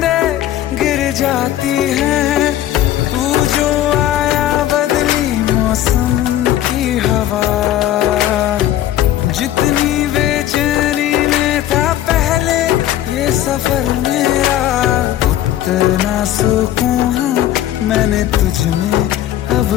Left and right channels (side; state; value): right; quieter; 12.7 dB